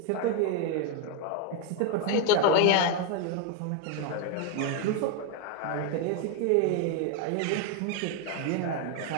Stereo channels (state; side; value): different; both; correlation 0.01